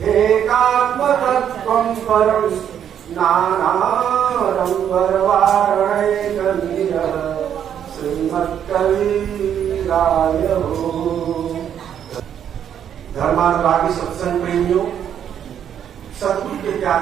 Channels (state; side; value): quieter; left; 9.2 dB